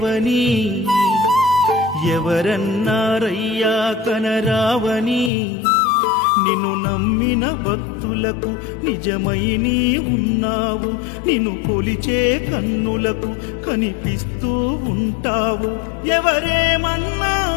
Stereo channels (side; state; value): right; drops out; at 5.3 s